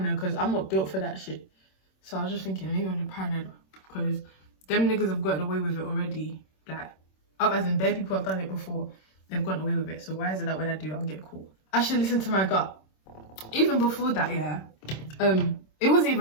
because I'm not built for that shit. So I was just thinking, maybe I'm paranoid because them niggas have gotten away with it already. Like, as in, bare people have done it before. They've gotten away with it. So why is it that when I do, I'll get caught? I should listen to my gut. Even before that, yeah, it wasn't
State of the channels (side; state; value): right; late; 26 ms